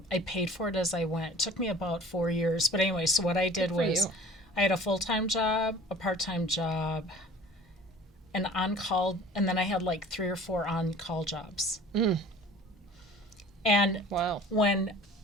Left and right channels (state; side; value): normal; both; correlation 0.45